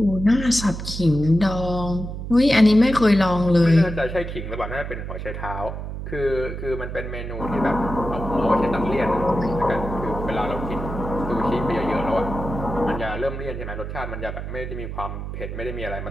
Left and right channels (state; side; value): noise; right; hum, 7 dB below the sound